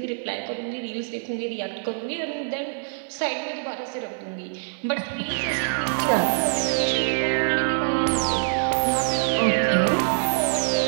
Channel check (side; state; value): left; silent; 56 dB below the other